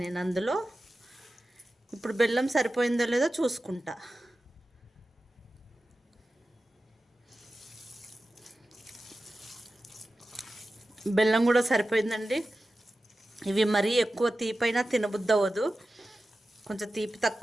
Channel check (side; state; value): both; normal; correlation 0.94